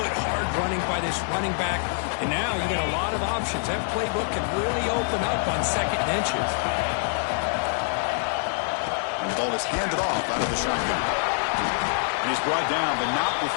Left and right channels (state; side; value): silent; right; digital silence